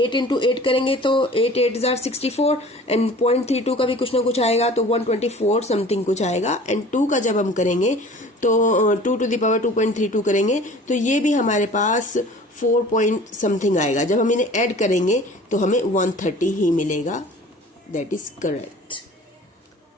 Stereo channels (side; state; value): both; normal; correlation 0.45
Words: इंटू 8 करेंगे तो 8 8 64 एंड 0.32 का भी कुछ ना कुछ आएगा, तो 124 समथिंग कुछ आएगा। एंड 2 का जब हम करेंगे तो 2 टू द पावर 2.32 करेंगे तो ये भी हमारे पास 4 पॉइंट समथिंग आएगा। जब हम इन्हें ऐड करेंगे तो हमें 130 ही मिलेगा। That is correct.